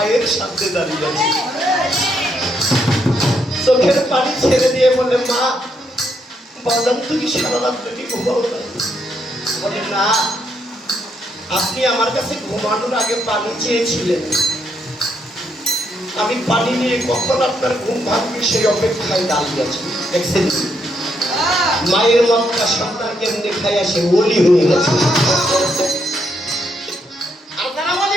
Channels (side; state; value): both; normal; correlation 0.76